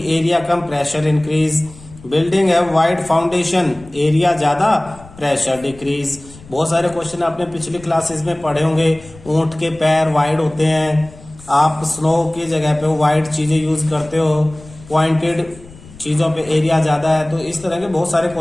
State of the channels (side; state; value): left; noise; rumble, 21 dB below the sound